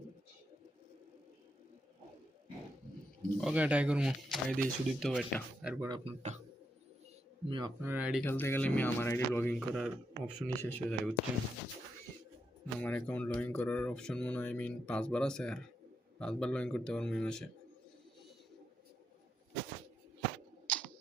okay try করবো। আইডি সুদীপ তো একটা, এরপর আপনারটা। আমি আপনার আইডি খেলতে গেলে আমি আমার আইডি লগ ইন করার অপশনই শেষ হয়ে যায়, বুঝছেন? আমার অ্যাকাউন্ট লগ ইন করার অপশন মনে হয় 5বার আছে, আর 5বার লগ ইন করতে পারবো এই মাসে।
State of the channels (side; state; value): both; normal; correlation 0.82